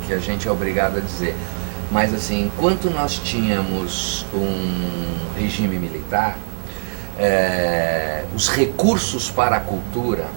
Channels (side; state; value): left; silent; 65 dB below the other